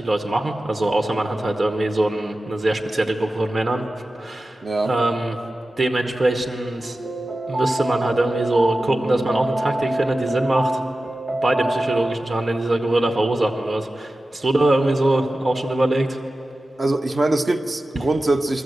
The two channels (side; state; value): both; normal; correlation 0.94